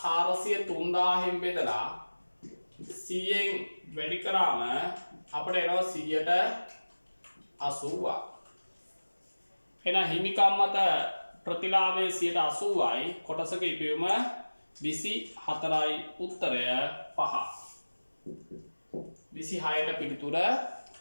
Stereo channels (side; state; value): both; inverted; correlation -1.00